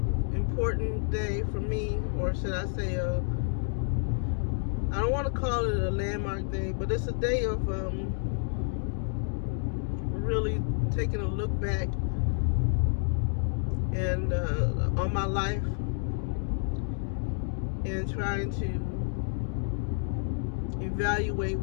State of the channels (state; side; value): silent; right; digital silence